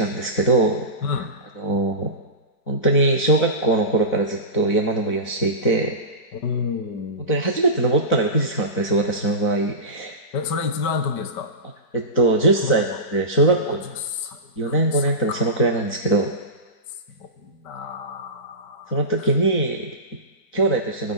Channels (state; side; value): late; right; 4.6 ms